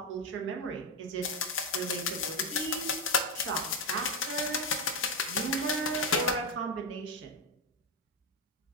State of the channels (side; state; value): both; normal; correlation 0.06